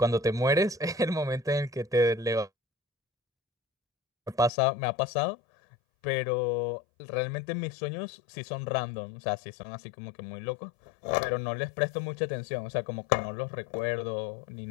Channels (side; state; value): right; drops out; at 4.5 s